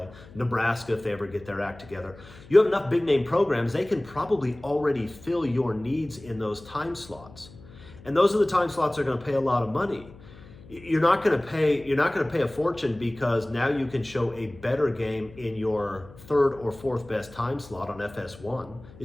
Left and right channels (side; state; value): left; noise; hum, 20 dB below the sound